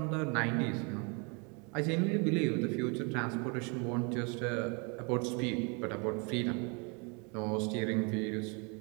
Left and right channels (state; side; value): quieter; left; 33.1 dB